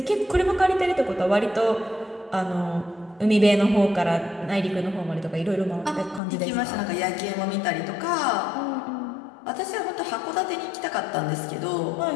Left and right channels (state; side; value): drops out; right; at 6.2 s